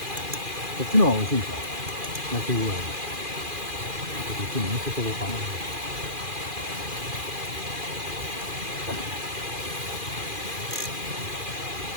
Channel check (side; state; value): left; late; 2.4 ms